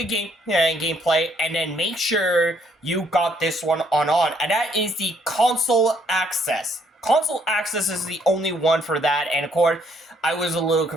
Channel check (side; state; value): both; normal; correlation 0.68